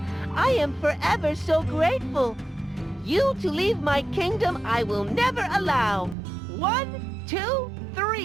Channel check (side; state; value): left; drops out; at 6.2 s